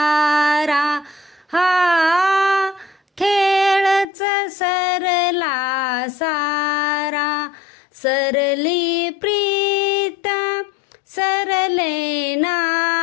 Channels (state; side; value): drops out; right; at 4.0 s